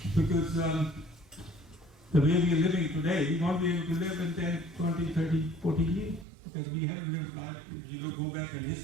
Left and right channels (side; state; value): left; drops out; at 6.2 s